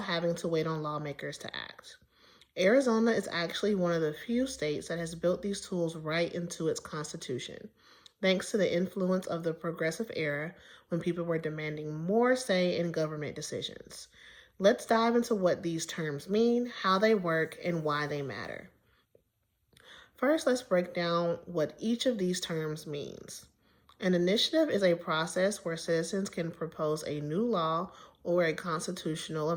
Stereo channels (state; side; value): identical; both; correlation 1.00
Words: having to wait on lawmakers to act. Arizona is actually one of the few states that has built these tools right into its constitution, thanks to the influence of the progressive era when people were demanding more say in government decisions. Let's dive into what these terms mean, how they work, and why they matter. First, let's break down what each of these terms means. An initiative is a process where citizens can propose a new law or a constitutional